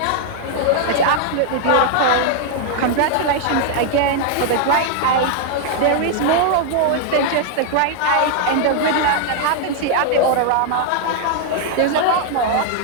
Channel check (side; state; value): both; different; correlation 0.00